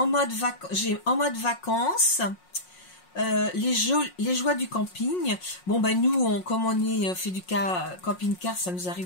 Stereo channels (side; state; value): right; late; 5.5 ms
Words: mode vacances. Les joies du camping. Bon, nous, comme on est fait du camping-car, ça nous